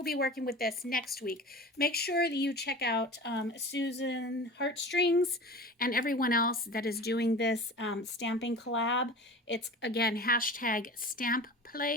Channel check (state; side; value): normal; both; correlation 0.36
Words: be working with this next week. Make sure that you check out Susan Heartstrings and everyone else that is doing this stamping collab. It's, again,